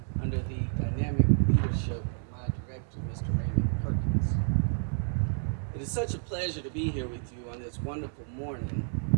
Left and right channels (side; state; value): left; silent; digital silence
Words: under the dynamic leadership of my director, Mr. Raymond Perkins. It is such a pleasure to be here with you on this wonderful morning